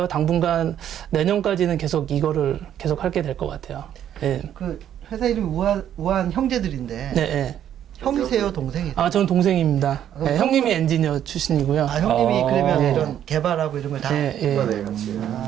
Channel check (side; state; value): left; quieter; 10.3 dB